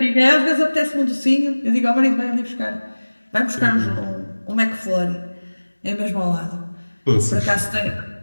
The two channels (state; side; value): inverted; both; correlation -1.00